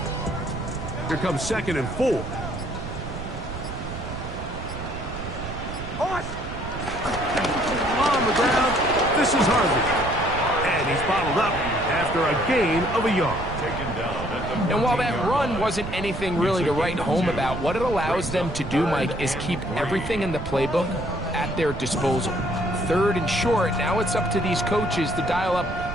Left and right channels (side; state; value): right; noise; rumble, 8 dB below the sound